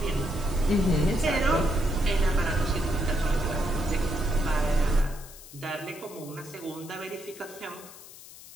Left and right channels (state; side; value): noise; left; hiss, 17 dB below the sound